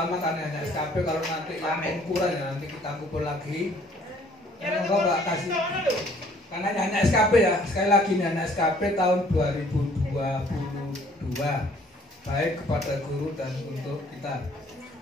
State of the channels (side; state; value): both; normal; correlation 0.59